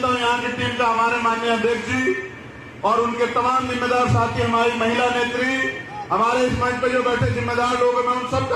हूं यहाँ की टीम का, हमारे माननीय अध्यक्ष जी और उनके तमाम जिम्मेदार साथी, हमारी महिला नेत्री हमारे इस मंच पर जो बैठे जिम्मेदार लोग हैं, मैं उन सबका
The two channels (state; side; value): identical; both; correlation 1.00